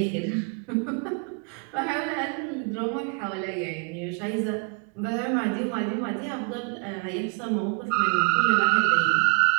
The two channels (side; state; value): left; quieter; 36.8 dB